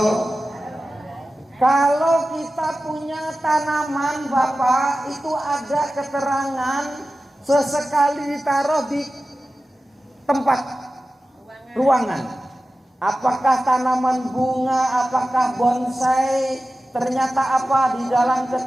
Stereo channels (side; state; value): both; normal; correlation 0.94